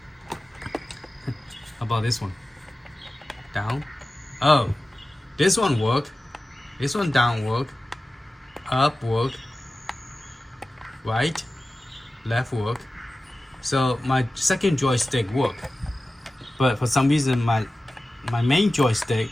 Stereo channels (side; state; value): both; normal; correlation 0.95